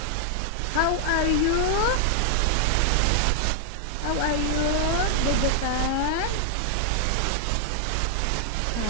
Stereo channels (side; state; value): both; different; correlation 0.00